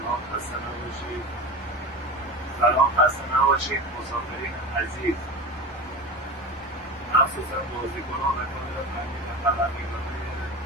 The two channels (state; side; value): normal; both; correlation 0.28